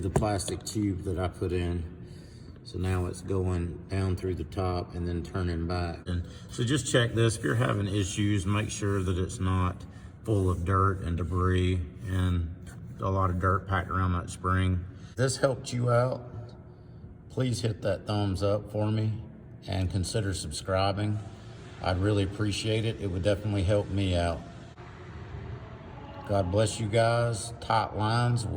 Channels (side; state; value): both; identical; correlation 1.00